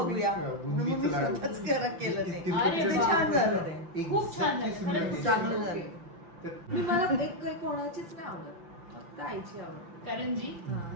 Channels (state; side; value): late; left; 5.8 ms